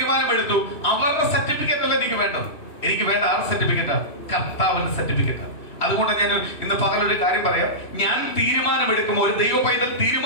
അവരുടെ സർട്ടിഫിക്കറ്റ് അല്ല എനിക്ക് വേണ്ടത്. എനിക്ക് വേണ്ട ആറ് സർട്ടിഫിക്കറ്റാ? കർത്താവിന്റെ സർട്ടിഫിക്കറ്റ്. അതുകൊണ്ട് ഞാൻ ഇന്ന് പകലൊരു കാര്യം പറയാം. ഞാൻ തീരുമാനമെടുക്കുമ്പോൾ, ഒരു ദൈവ പൈതൽ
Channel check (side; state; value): right; late; 3.1 ms